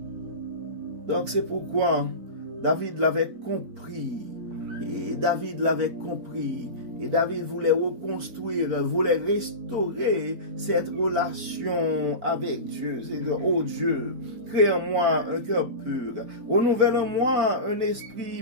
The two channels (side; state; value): left; late; 4.4 ms